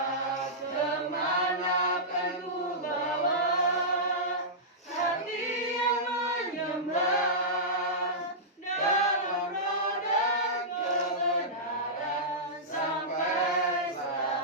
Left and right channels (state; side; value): normal; both; correlation -0.14